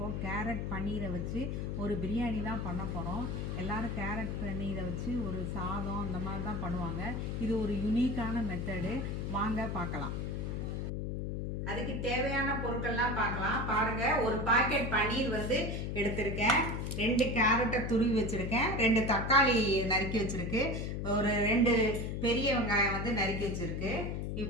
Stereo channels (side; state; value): left; noise; hum, 3 dB below the sound